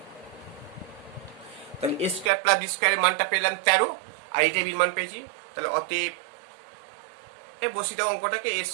তাহলে এ স্কোয়ার প্লাস বি স্কোয়ারের মানটা পেলাম 13, আর এই এবির মান পেয়েছি। তাহলে অতএব বসি দাও অঙ্কটাকে, এ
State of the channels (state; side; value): drops out; left; at 2.3 s